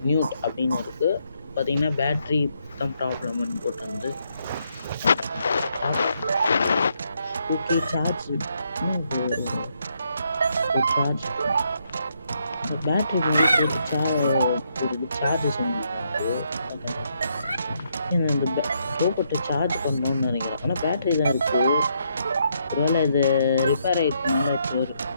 நியூட் அப்படின்னு இருக்குது. பார்த்தீங்கன்னா பேட்ரி தான் ப்ராப்ளம்னு போட்டு வந்து ஓகே சார்ஜ் பேட்ரி வந்து போட்டு சார்ஜ் செஞ்சுட்டு இந்த ரோபோட்டை சார்ஜ் பண்ணணும்னு நினைக்கிறேன். ஆனால் பேட்ரி தான் இருக்குது. ஒருவேளை இது ரிப்பேர் ஆகிடுச்சுனால இப்போ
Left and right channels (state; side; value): inverted; both; correlation -0.76